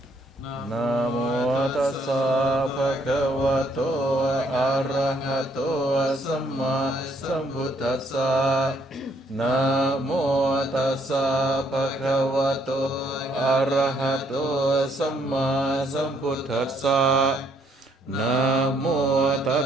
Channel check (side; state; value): both; normal; correlation 0.69